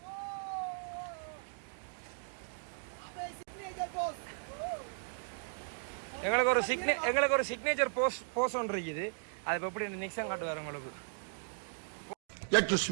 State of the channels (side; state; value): left; silent; digital silence